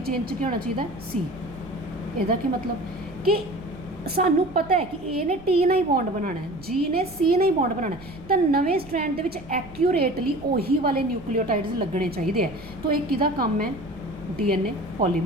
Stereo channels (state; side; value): noise; right; rumble, 20 dB below the sound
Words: ਚੇਨ 'ਚ ਕੀ ਹੋਣਾ ਚਾਹੀਦਾ, C। ਇਹਦਾ ਕੀ ਮਤਲਬ ਕਿ ਸਾਨੂੰ ਪਤਾ ਹੈ ਕਿ A ਨੇ T ਨਾਲ ਹੀ ਬੌਂਡ ਬਣਾਉਣਾ ਹੈ, G ਨੇ C ਨਾਲ ਹੀ ਬੌਂਡ ਬਣਾਉਣਾ ਹੈ, ਤਾਂ ਨਵੇਂ ਸਟ੍ਰੈਂਡ ਦੇ ਵਿੱਚ ਐਕਿਊਰੇਟਲੀ ਉਹੀ ਵਾਲੇ ਨਿਊਕਲੀਓਟਾਈਡਸ ਲੱਗਣੇ ਚਾਹੀਦੇ ਹੈ। ਤਾਂ ਇਹ ਕਿਹਦਾ ਕੰਮ ਹੈ, DNA